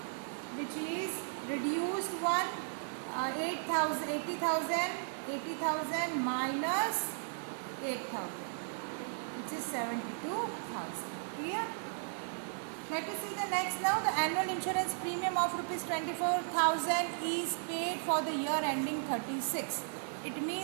which is reduced one. 80,000 minus 8,000 which is 72,000. Clear? Let us see the next now. The annual insurance premium of rupees 24,000 is paid for the year ending 36. It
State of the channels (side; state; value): left; silent; digital silence